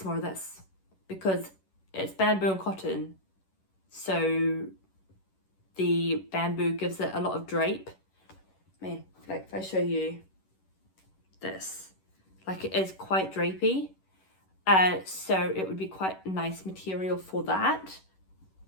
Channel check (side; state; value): right; late; 11 ms